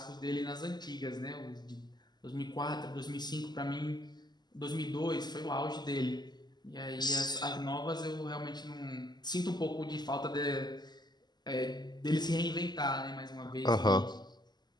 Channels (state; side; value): late; right; 0.21 ms